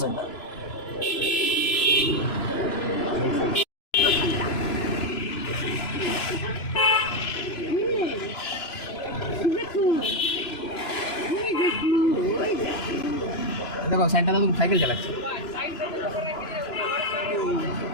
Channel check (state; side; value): late; right; 2.9 ms